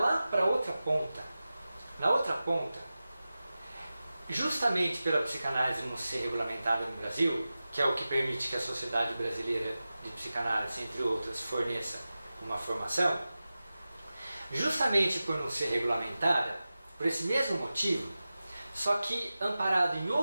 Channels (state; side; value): inverted; both; correlation -0.95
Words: para a outra ponta. Na outra ponta, justamente pela psicanálise não ser regulamentada no Brasil, que é o que permite que a Sociedade Brasileira de Psicanálise, entre outras, forneça uma formação, justamente por não ser regulamentada, por esse mesmo motivo, só que amparado em